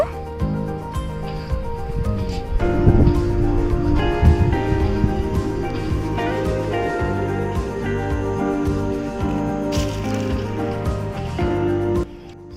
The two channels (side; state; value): both; identical; correlation 1.00